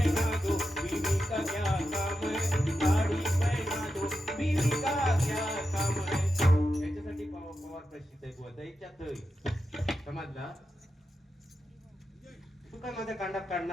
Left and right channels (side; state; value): both; normal; correlation 0.88